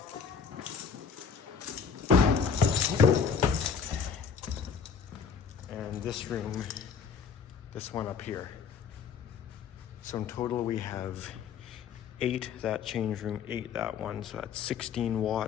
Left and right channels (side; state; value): right; quieter; 6.2 dB